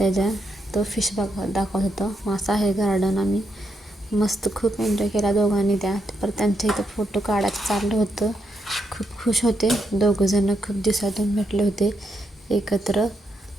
तो फिश दाखवत होता. असं आहे गार्डन. आम्ही मस्त खूप एन्जॉय केला दोघांनी. परत त्यांच्या इथं फोटो काढायचं चाललं होतं. खूप खुश होते दोघंजणं, खूप दिवसातून भेटले होते एकत्र.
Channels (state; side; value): normal; both; correlation 0.81